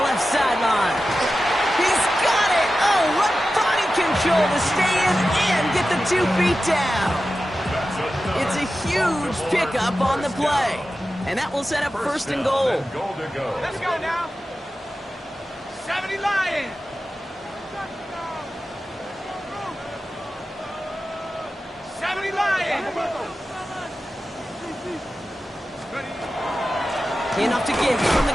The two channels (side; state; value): both; normal; correlation 0.93